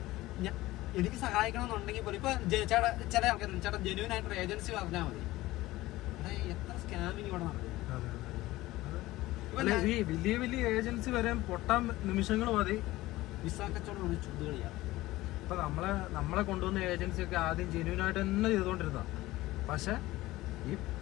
എനിക്ക് സഹായിക്കണമെന്നുണ്ടെങ്കിൽ പോലും ഇപ്പൊ ചില ആൾക്കാർ ചേട്ടാ ജെന്യൂൻ ആയിട്ടൊരു ഏജൻസി പറഞ്ഞാൽ മതി. എത്ര സ്കാമിങ് ഇവിടെ നടക്കും. ഈ വലിയ വലിയ ഏജൻസി വരെ പൊട്ടാൻ നിമിഷങ്ങൾ മതി. വിസ കച്ചവടം ചുടുകളിയാണ്. ഇപ്പൊ നമ്മളെ കൊണ്ടുവന്ന ഏജൻസി ഒക്കെ ആദ്യം ജെന്യൂനായിട്ട് തന്നെ ചെയ്തുകൊണ്ടിരുന്ന, പക്ഷെ ഈ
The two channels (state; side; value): quieter; right; 17.8 dB